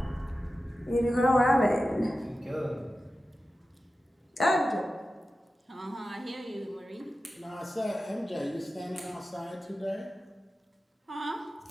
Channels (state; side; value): normal; both; correlation 0.93